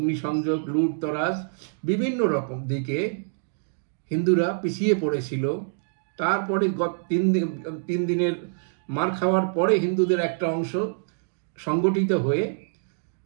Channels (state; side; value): silent; left; digital silence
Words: লুটতরাজ, বিভিন্ন রকম দিকে হিন্দুরা পিছিয়ে পড়েছিল। তারপরে 3 দিনের মার খাওয়ার পরে হিন্দুদের একটা অংশ সংগঠিত হয়ে